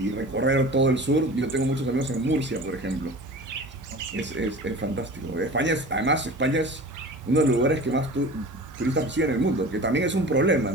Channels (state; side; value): normal; both; correlation 0.37